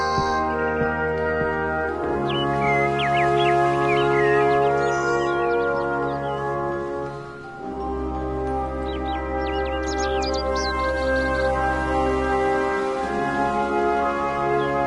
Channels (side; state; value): both; identical; correlation 1.00